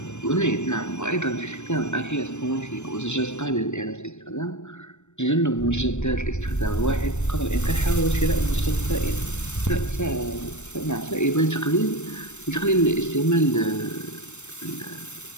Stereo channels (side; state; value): right; late; 0.83 ms